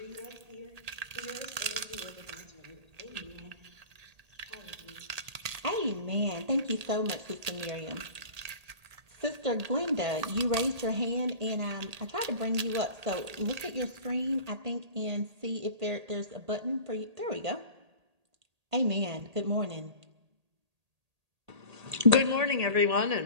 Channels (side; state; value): left; late; 1.8 ms